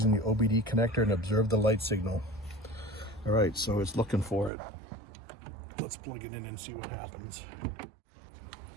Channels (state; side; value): drops out; left; at 4.5 s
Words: the OBD connector and observe the light signal. All right, so it's looking for it. Let's plug it in and see what happens.